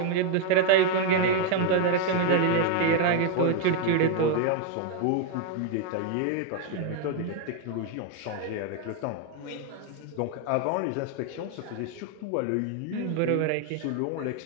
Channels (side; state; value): both; different; correlation 0.01